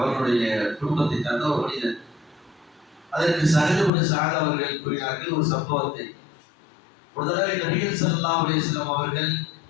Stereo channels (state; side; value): drops out; right; at 3.9 s